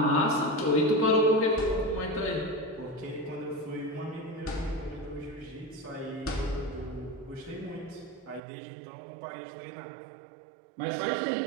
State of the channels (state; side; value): drops out; left; at 8.4 s